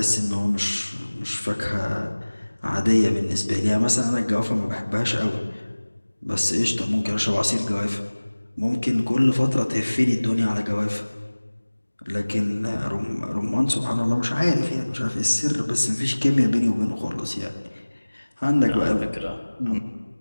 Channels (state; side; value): inverted; both; correlation -1.00